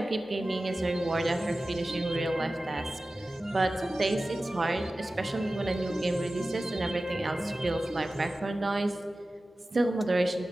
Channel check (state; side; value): normal; both; correlation 0.96